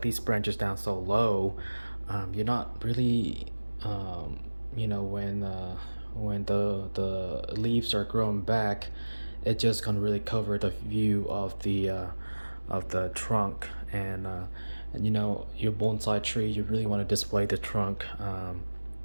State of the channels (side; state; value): both; inverted; correlation -1.00